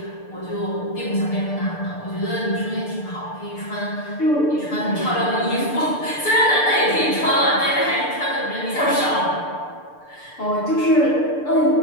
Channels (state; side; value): late; right; 6.8 ms